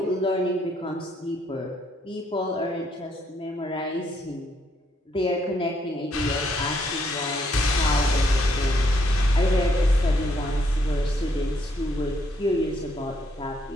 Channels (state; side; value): normal; both; correlation 0.72